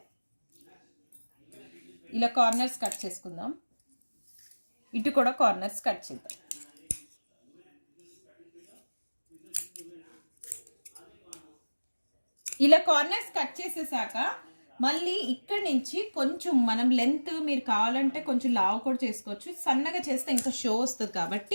ఇలా కార్నర్స్ కట్ చేసుకుందాం. ఇటు కూడా కార్నర్స్ కట్ చేద్దాం. ఇలా కార్నర్స్ కట్ చేసేసాక మళ్ళీ ఇక్కడ నుంచి కొంచెం మనం లెంత్ మీరు కావాలంటే కొంచెం లావు కూడా చేసుకోవచ్చు. సన్నగా చేస్తే ఇంకా షో వస్తుంది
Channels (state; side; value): inverted; both; correlation -1.00